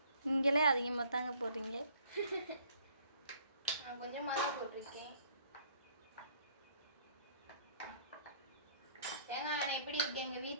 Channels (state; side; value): inverted; both; correlation -0.59